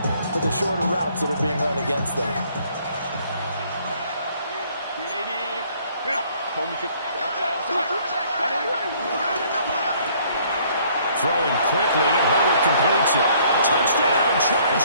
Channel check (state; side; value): inverted; both; correlation -0.61